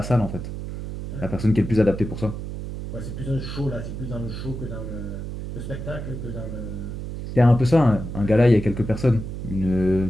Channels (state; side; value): noise; right; hum, 7 dB below the sound